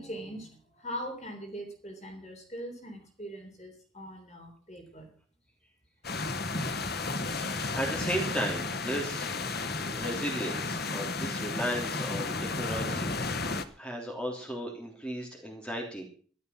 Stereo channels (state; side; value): normal; both; correlation 0.48